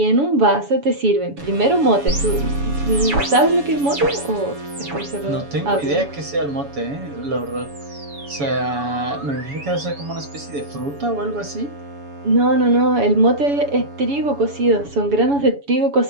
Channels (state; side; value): late; left; 7.1 ms